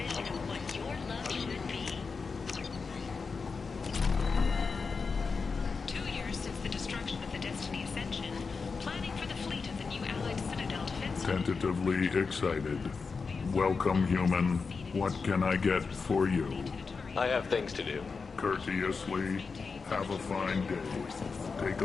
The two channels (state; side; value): quieter; right; 4.8 dB